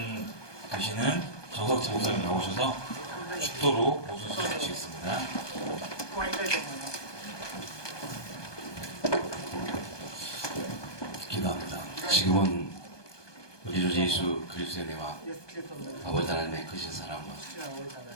되시는 정석진 목사님 나오셔서 축도로 모수 주시겠습니다. 기도합니다. 지금은 우리 주 예수 그리스도의 은혜와 아버지 하나님의 크신 사랑과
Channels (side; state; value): right; late; 1.2 ms